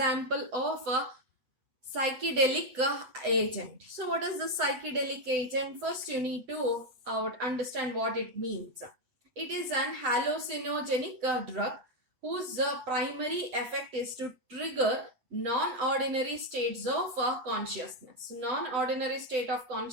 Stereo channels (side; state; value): left; late; 7.9 ms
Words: of a psychedelic agent. So what is the psychedelic agent? First you need to understand what it means. It is an hallucinogenic drug whose primary effect is to trigger non-ordinary states of consciousness. Non-ordinary state of